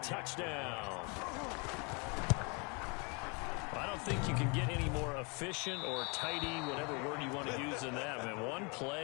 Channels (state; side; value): quieter; right; 31.7 dB